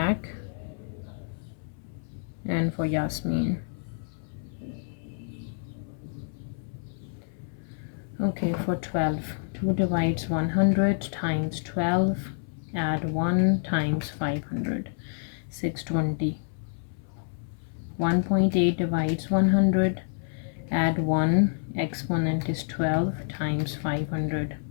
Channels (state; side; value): silent; right; 59 dB below the other